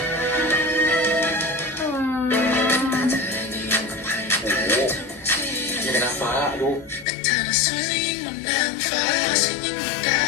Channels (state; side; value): drops out; right; at 7.1 s